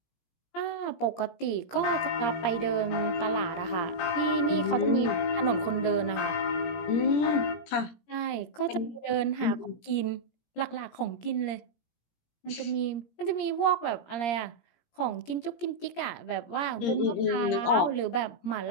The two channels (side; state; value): right; late; 17 ms